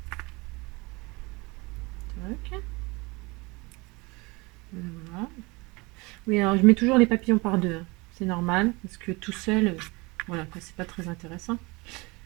Tac. Voilà. Oui, alors je mets toujours les papillons par deux. Hein. C'est normal, parce que tout seul, voilà, c'est pas très intéressant.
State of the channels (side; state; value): left; quieter; 25.4 dB